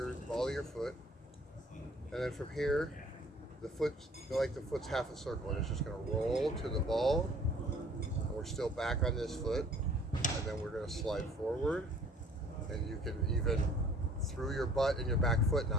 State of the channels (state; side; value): normal; both; correlation 0.54